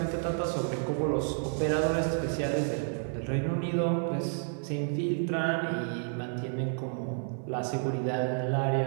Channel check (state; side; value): silent; left; 57 dB below the other